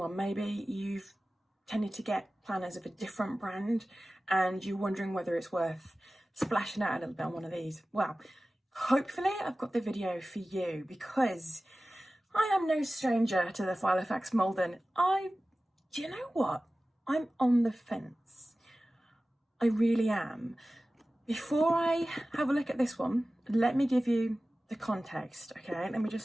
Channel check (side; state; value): both; normal; correlation 0.96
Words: Maybe you've tended to get planners of a different brand and you're wondering whether it's worth splashing out a little bit on one of these. Well, hopefully I've got the video for you, because I am no stranger to the Filofax Malden. Do you know what? I'm on the fence. I really am. Before I have a look at this one, let me give you the context, okay? Let me